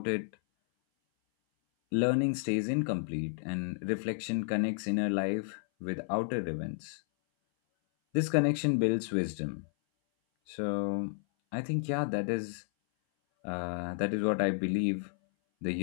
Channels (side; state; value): right; silent; 56 dB below the other